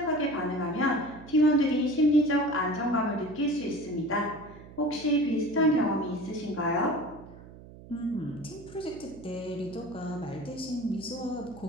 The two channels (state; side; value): noise; right; hum, 18 dB below the sound